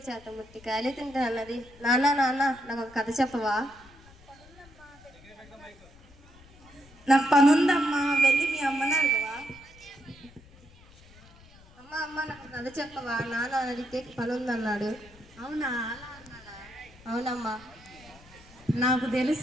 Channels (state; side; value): noise; left; rumble, 24 dB below the sound